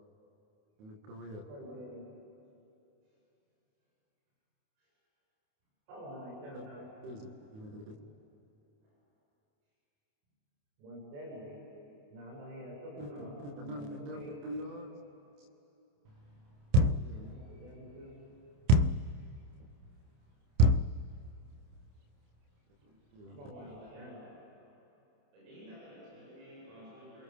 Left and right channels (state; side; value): late; left; 28 ms